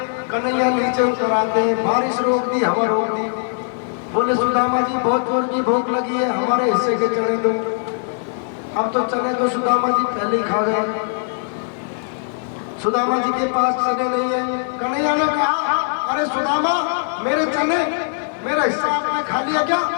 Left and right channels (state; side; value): silent; right; digital silence